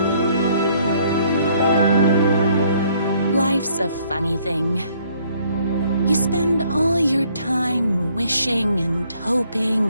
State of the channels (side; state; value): both; inverted; correlation -0.64